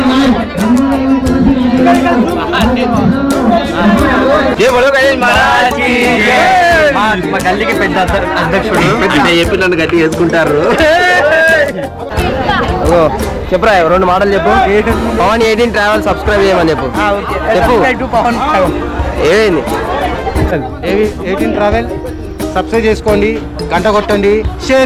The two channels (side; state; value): both; identical; correlation 1.00